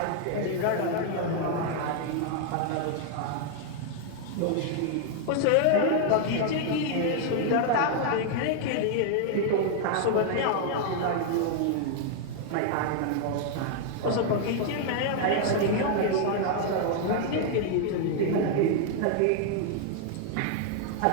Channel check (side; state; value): both; different; correlation 0.00